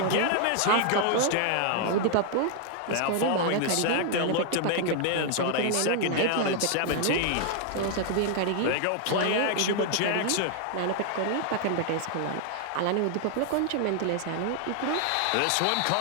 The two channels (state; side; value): different; both; correlation 0.00